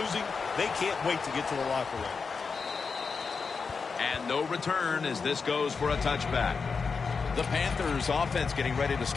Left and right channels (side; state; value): right; quieter; 5.1 dB